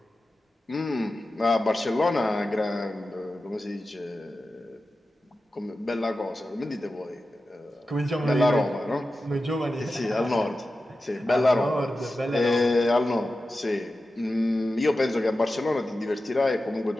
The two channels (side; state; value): both; normal; correlation 0.93